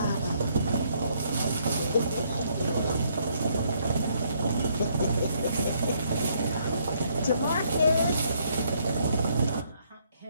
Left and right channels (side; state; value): both; inverted; correlation -0.70